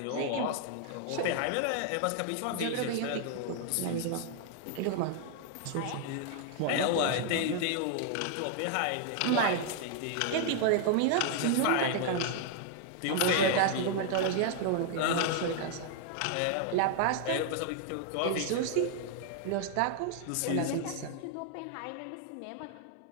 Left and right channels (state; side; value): different; both; correlation 0.00